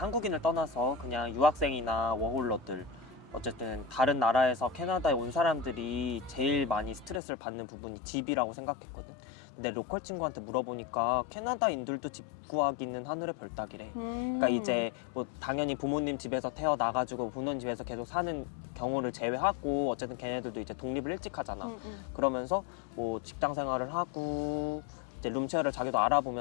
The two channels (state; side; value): drops out; right; at 7.2 s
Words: 한국인을 떠나서 그냥 유학생이나 워홀러들 어쨌든 다른 나라에서 캐나다에 온 사람들이 제일 많이 스트레스를 받는 부분이 집이라고 생각했거든. 근데 로컬 친구한테 물어보니까 캐나다인들도 집 구하기는 하늘의 별 따기래. 그러니까 이제 뭐 당연히 부모님 집에서 태어나가지고 부모님 집에서 계속 사는 경우를 제외하고 어쨌든 걔네들도 이제 독립을 일찍 하잖아. 그러면서 뭐 직장 생활을 하고 이제 룸쉐어를 자기도